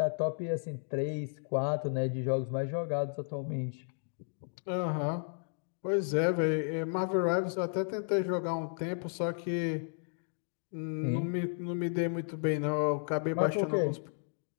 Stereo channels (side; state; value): right; silent; digital silence